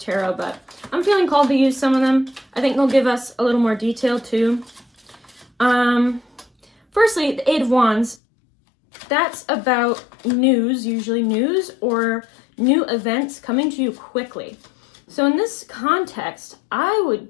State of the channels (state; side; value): drops out; right; at 8.2 s